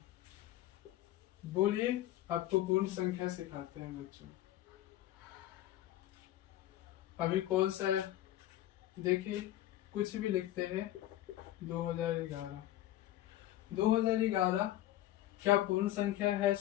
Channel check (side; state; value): right; quieter; 14.1 dB